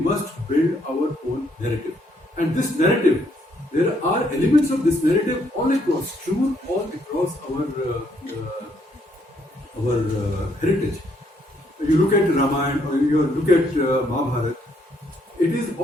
build our own narrative. And this narrative, there are elements of this narrative all across our heritage. You look at Ramayana or you look at Mahabharata, it is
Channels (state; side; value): normal; both; correlation 0.71